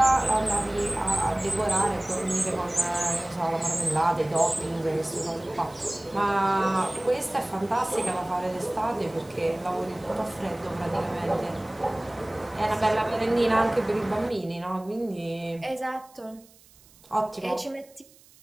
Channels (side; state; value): right; noise; hiss, 27 dB below the sound